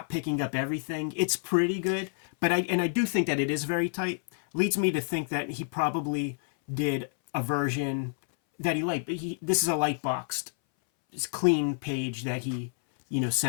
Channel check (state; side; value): silent; right; 59 dB below the other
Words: picking up everything. It's pretty good, but I do think that it is very tight. Leads me to think that he probably did a version that he liked. This is a light boxed, clean page that he,